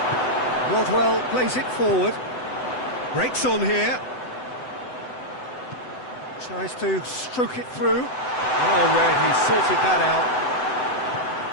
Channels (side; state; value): right; late; 7.9 ms